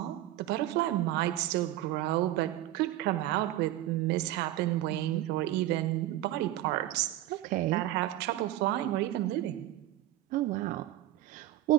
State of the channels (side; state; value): left; quieter; 14.6 dB